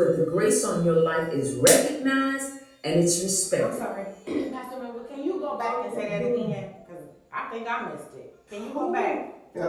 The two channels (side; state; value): both; identical; correlation 1.00